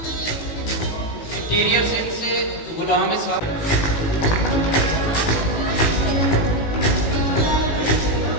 इंटीरियर सिंध से गुलाम इस्लाम।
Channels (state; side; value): late; right; 18 ms